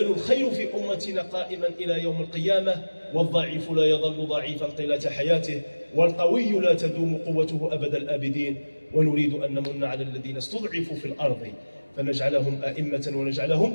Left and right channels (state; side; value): inverted; both; correlation -1.00